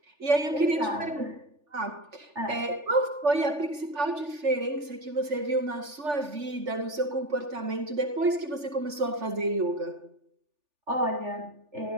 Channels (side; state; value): left; late; 3.4 ms